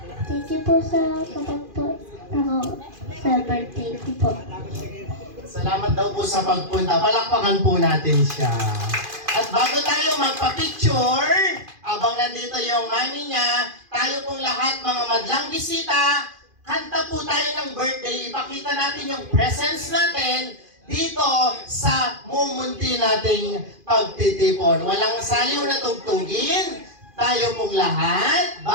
Thank you po sa kapagpo ako sa birthday ko po. Salamat daw po sa pagpunta. Palakpakan po natin siya. At bago tayo magpa-picture, abang nandito yung mami niya, tayo pong lahat mga madlang bisita, kanta po tayo ng birthday. Ipakita natin yung presence natin dito sa mumunti nating pagtitipon. Walang saliw na tugtugin. Tayo pong lahat,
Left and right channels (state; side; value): late; left; 2.5 ms